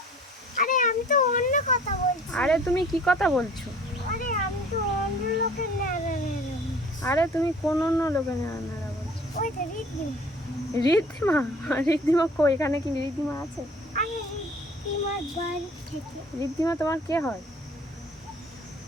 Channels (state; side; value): normal; both; correlation 0.51